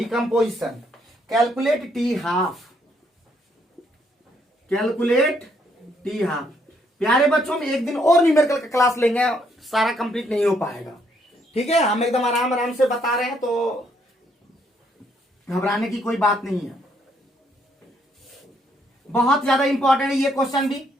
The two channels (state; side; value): normal; both; correlation 0.71